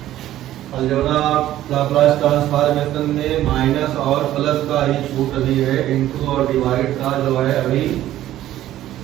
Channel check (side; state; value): left; quieter; 13.4 dB